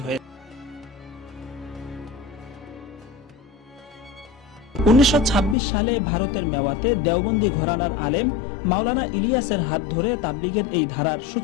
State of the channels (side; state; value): right; drops out; at 5.6 s